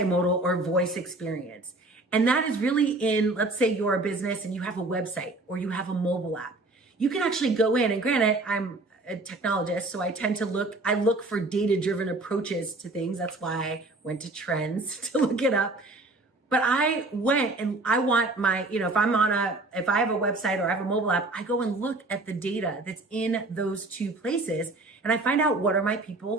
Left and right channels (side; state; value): left; quieter; 3.0 dB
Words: or voice experience. And that is really in, let's say you're a business and you have a website or you have a mobile app. You can actually go in, and granted, I'm a technologist, so I tend to look for data-driven approaches to things. That's why I went to Trends to look it up. But I went and I want my, if I have a website or I have a mobile app, I go and look at the data that's in those two places. And I find out, what are my